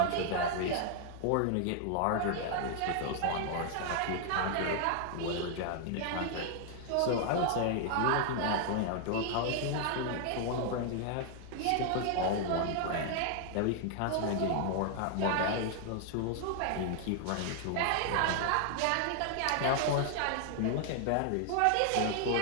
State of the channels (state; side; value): different; both; correlation 0.00